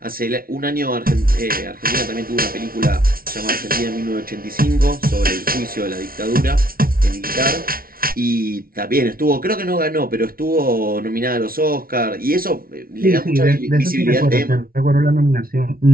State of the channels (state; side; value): late; left; 0.43 ms